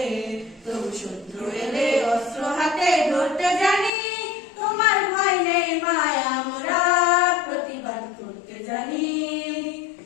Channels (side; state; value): right; drops out; at 3.9 s